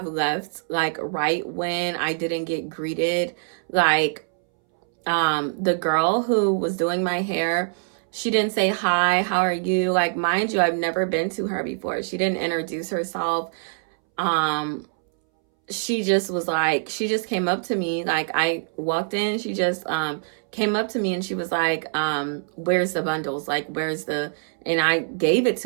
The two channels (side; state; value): left; silent; 63 dB below the other